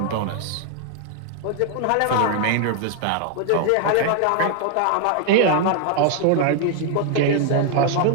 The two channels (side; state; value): both; different; correlation 0.00